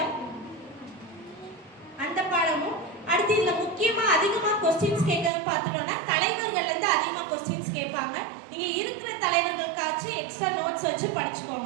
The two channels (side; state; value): left; drops out; at 5.3 s